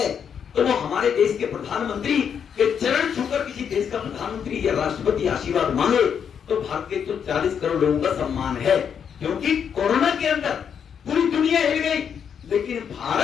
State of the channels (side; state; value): right; quieter; 7.6 dB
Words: तो वो हमारे देश के प्रधानमंत्री के चरण छूकर किसी देश का प्रधानमंत्री या राष्ट्रपति आशीर्वाद मांगे तो भारत के 140 करोड़ लोगों का सम्मान है। क्योंकि कोरोना के अंदर पूरी दुनिया हिल गई, लेकिन